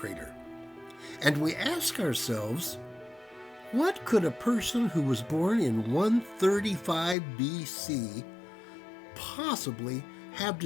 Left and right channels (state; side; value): drops out; right; at 7.2 s